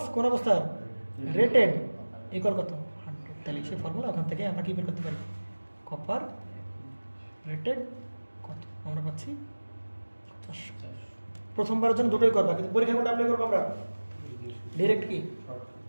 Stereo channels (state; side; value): inverted; both; correlation -1.00